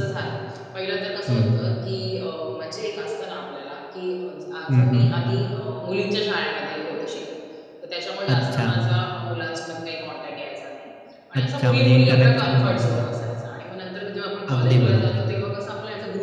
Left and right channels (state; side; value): identical; both; correlation 1.00